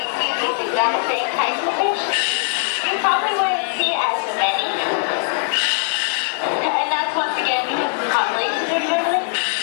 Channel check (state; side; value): silent; right; 65 dB below the other